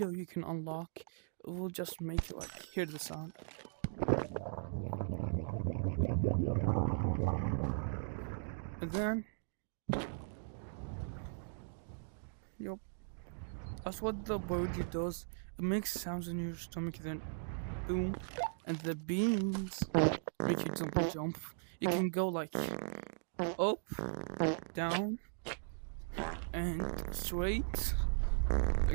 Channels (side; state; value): left; silent; digital silence